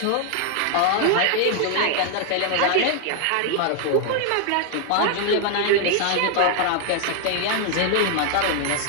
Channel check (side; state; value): both; different; correlation 0.00